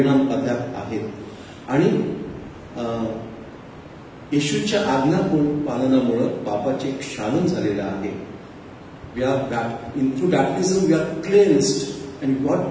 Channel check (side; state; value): both; identical; correlation 1.00